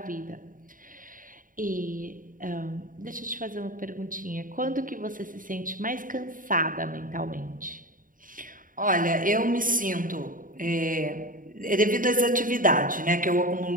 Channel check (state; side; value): late; left; 0.39 ms